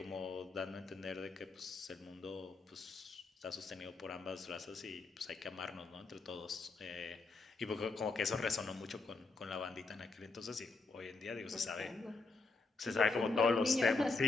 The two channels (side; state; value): right; quieter; 3.8 dB